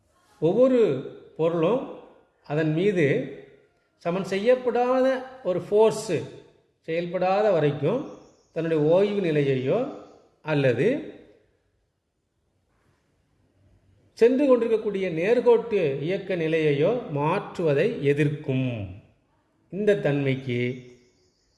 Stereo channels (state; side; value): identical; both; correlation 1.00